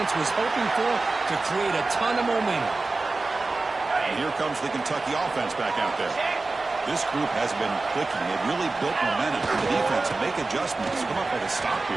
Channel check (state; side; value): quieter; left; 3.5 dB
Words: was hoping for to create a ton of momentum. And here comes the Kentucky offense back out there. This group has been clicking. They've really built momentum for the defense and make adjustments. Come up with a stop